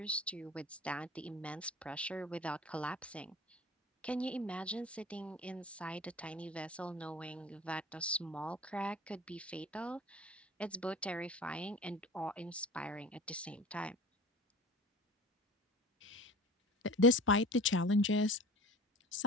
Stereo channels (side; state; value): both; normal; correlation 0.40